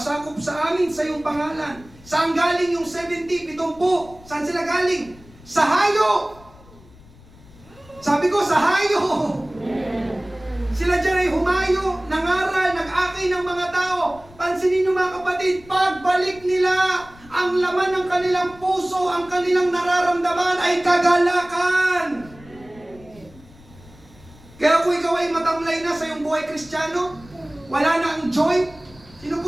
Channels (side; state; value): left; noise; rumble, 23 dB below the sound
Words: sa amin sa iyong pangalan. Saan galing yung 70, 70? Saan sila galing? Sa hayo! Sabi ko, sa hayo! Sila dyan ay humayo, nangaral, nag-akay ng mga tao. Pansinin nyo mga kapatid, pagbalik nila, ang laman ng kanilang puso, ang kanilang nararamdaman ay kagalakan. Kaya kung ikaw ay matamlay na sa iyong buhay Kristiyano, wala na ang joy. Sino